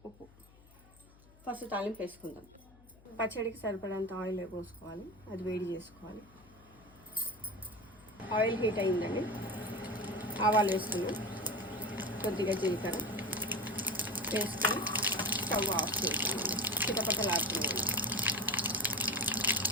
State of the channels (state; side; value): noise; left; hum, 25 dB below the sound